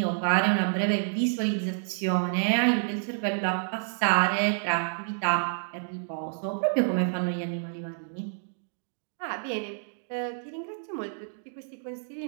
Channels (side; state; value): left; silent; digital silence